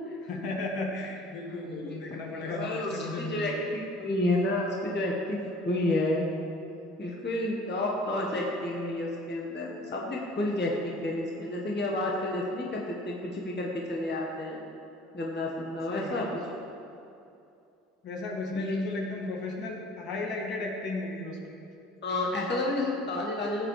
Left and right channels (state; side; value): normal; both; correlation 0.48